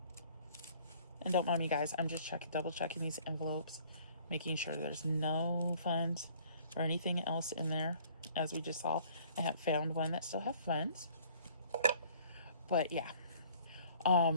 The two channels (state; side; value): inverted; both; correlation -0.55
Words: And don't mind me, guys, I'm just double checking these envelopes, making sure there's no funds or anything else in there. As we just saw, I have found one that still have funds. But yeah,